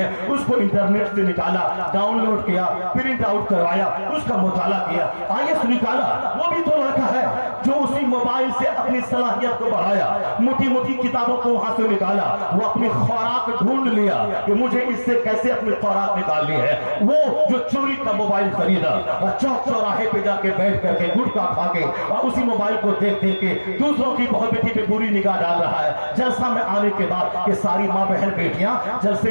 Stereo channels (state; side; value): inverted; both; correlation -1.00